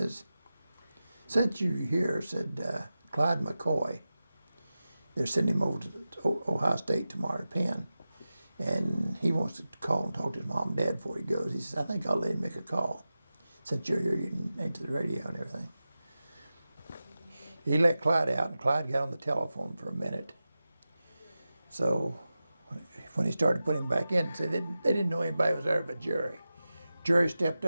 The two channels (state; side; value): inverted; both; correlation -0.94